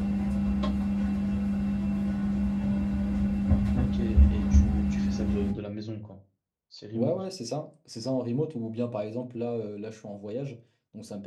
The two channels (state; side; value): identical; both; correlation 1.00